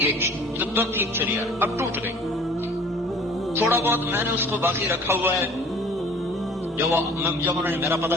تو ٹھیک چلی ہے، اب ٹوٹ گئی. تھوڑا بہت میں نے اس کو باقی رکھا ہوا ہے، جب انہوں نے میرا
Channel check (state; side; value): normal; both; correlation 0.49